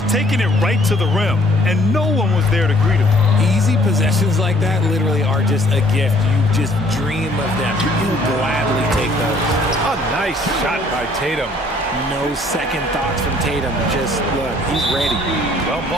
taking it right to the rim, and no one was there to greet him. Easy possessions like that literally are just a gift. You just dream of them. You'll gladly take those. A nice shot by Tatum. No second thoughts from Tatum. Just look, he's ready. Well,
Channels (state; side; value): normal; both; correlation 0.60